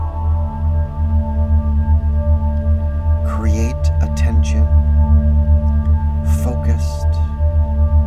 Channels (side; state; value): both; identical; correlation 1.00